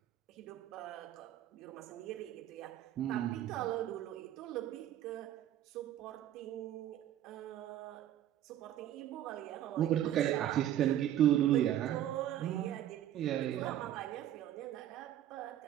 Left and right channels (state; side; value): quieter; left; 11.8 dB